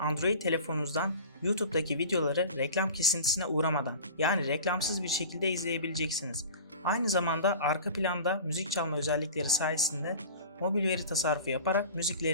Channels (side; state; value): both; inverted; correlation -0.37